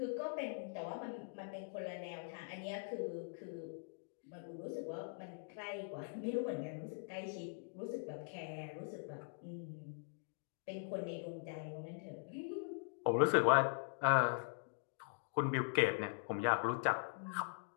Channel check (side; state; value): right; silent; digital silence